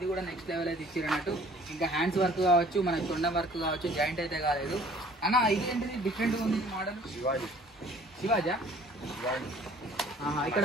కూడా నెక్స్ట్ లెవెల్ అయితే ఇచ్చారు అన్నట్టు. ఇంకా హ్యాండ్స్ వర్క్ కావచ్చు మనకు తొండ వర్క్ కావచ్చు జాయింట్ అయితే కాలేదు అన్న. ఇది ఏంటిది డిఫరెంట్గా ఉంది మోడల్? శివాజా ఇక్కడ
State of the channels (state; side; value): normal; both; correlation 0.53